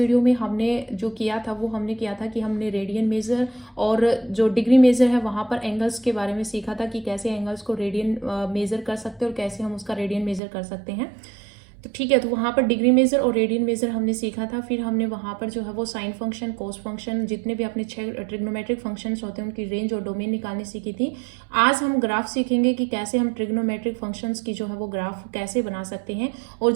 में हमने जो किया था वो हमने किया था कि हमने रेडियन मेजर और जो डिग्री मेजर है वहाँ पर एंगल्स के बारे में सीखा था कि कैसे एंगल्स को रेडियन मेजर कर सकते हैं और कैसे हम उसका रेडियन मेजर कर सकते हैं। तो ठीक है, तो वहाँ पर डिग्री मेजर और रेडियन मेजर हमने सीखा था। फिर हमने वहाँ पर जो है वो साइन फंक्शन, कोस फंक्शन, जितने भी अपने 6 ट्रिग्नोमेट्रिक फंक्शंस होते हैं उनकी रेंज और डोमेन निकालनी सीखी थी। आज हम ग्राफ सीखेंगे कि कैसे हम ट्रिग्नोमेट्रिक फंक्शंस की जो है वो ग्राफ कैसे बना सकते हैं। और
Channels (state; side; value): drops out; left; at 10.4 s